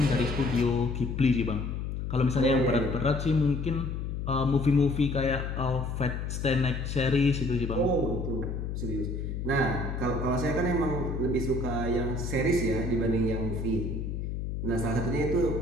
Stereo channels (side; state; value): left; noise; hum, 4 dB below the sound